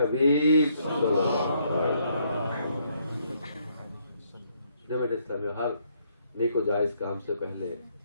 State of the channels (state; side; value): inverted; both; correlation -0.70